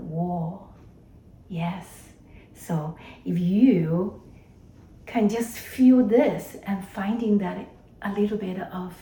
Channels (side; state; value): both; identical; correlation 1.00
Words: Yes. So if you can just feel this and finding that a little bit of